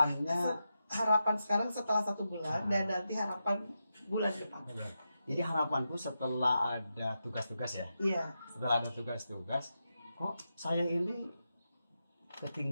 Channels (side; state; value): both; inverted; correlation -0.88